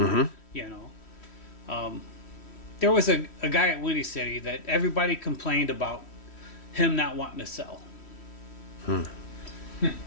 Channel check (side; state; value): right; late; 3.1 ms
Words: You know. There was a guy at Windy City that everybody complained about him not wanting to sell.